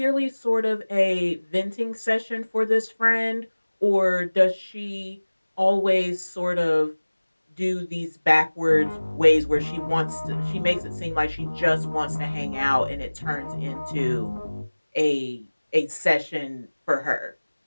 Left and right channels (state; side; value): inverted; both; correlation -1.00